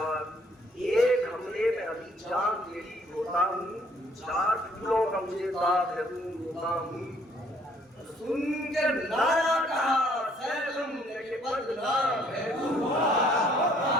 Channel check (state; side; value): normal; both; correlation 0.63